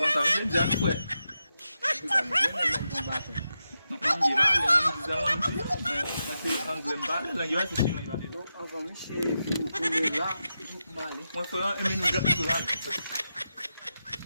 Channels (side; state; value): both; inverted; correlation -0.88